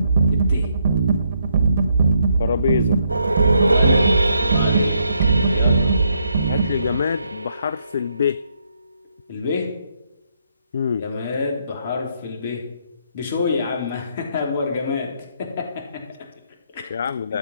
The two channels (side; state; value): both; inverted; correlation -0.75